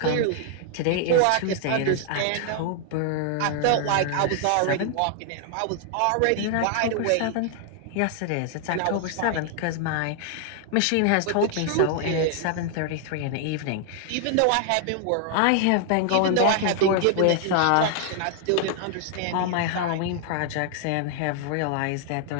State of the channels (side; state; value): both; different; correlation 0.00